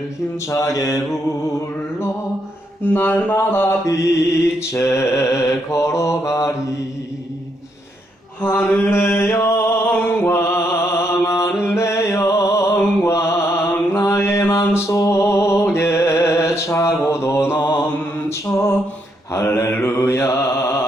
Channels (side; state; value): both; normal; correlation 0.76